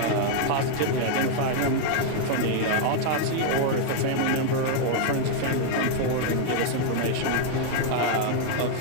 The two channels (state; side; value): different; both; correlation 0.00